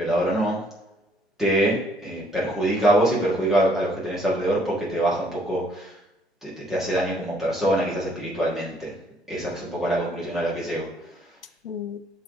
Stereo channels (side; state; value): both; normal; correlation 0.65